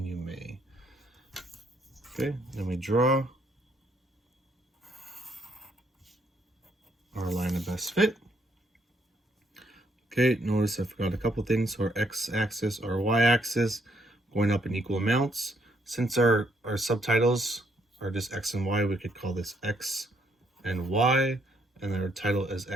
you may. Okay, then we draw our line of best fit. Okay, notice I forgot a couple things. So our x-axis, our y-axis, going up in equal amounts. Since our subtitles are just x and y, we could call this x and y, and our title is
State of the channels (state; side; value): normal; both; correlation 0.71